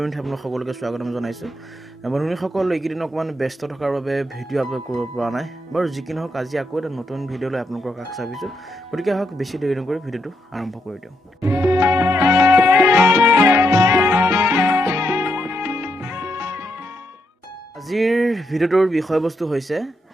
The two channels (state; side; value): normal; both; correlation 0.79